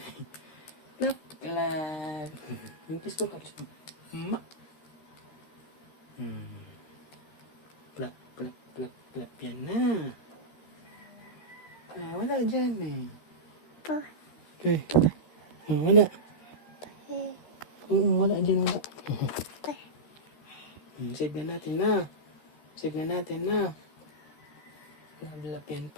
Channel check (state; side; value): late; right; 13 ms